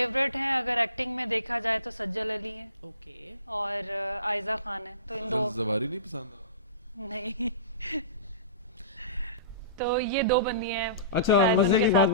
ہیں اگر ایکٹنگ میں دیکھا جائے تو سجل علی ہے اوکے اور آئزہ خان ہے. تو ان دو زواری نہیں پسند؟ نہیں تو یہ دو بندی ہیں. اچھا شاید ان مزے کے کی ساتھ بات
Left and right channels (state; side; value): inverted; both; correlation -0.35